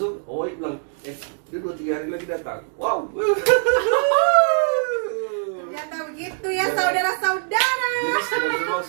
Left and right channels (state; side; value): silent; left; digital silence